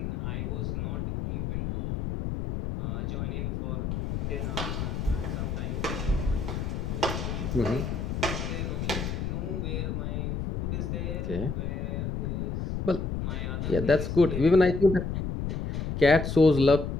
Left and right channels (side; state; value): left; noise; rumble, 2 dB below the sound